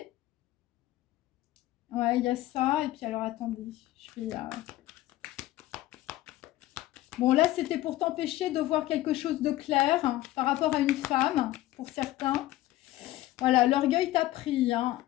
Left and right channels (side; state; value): right; quieter; 15.9 dB